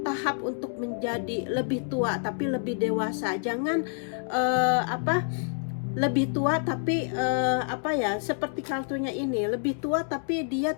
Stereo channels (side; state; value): right; silent; 59 dB below the other